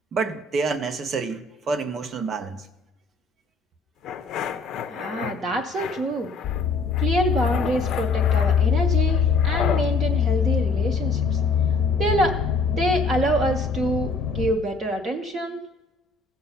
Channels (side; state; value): right; quieter; 3.3 dB